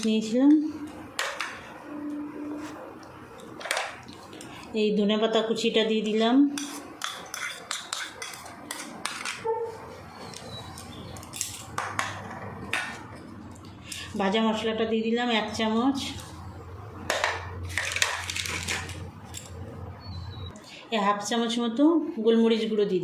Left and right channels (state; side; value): identical; both; correlation 1.00